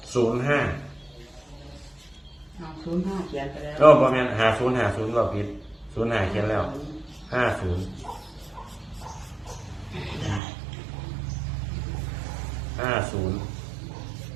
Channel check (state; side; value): drops out; left; at 10.4 s